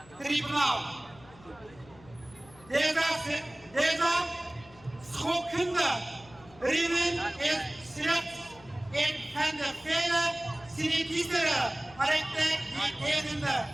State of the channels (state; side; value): noise; left; hum, 23 dB below the sound